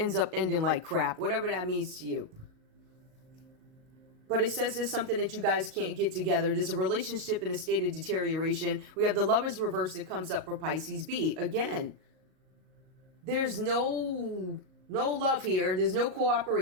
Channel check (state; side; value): late; left; 38 ms